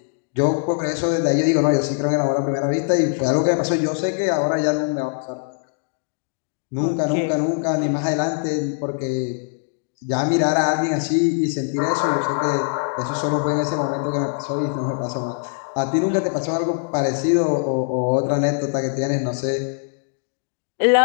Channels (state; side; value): silent; right; 64 dB below the other